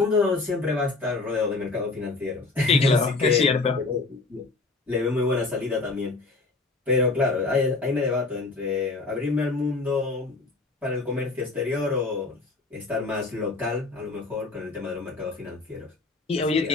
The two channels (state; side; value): quieter; right; 3.6 dB